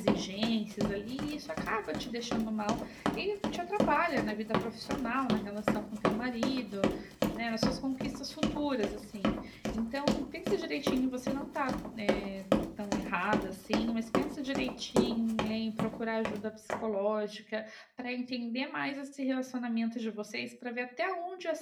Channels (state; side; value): identical; both; correlation 1.00